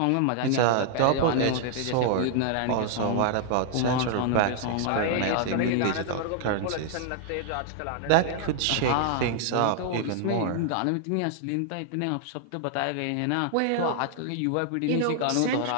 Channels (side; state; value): both; different; correlation 0.00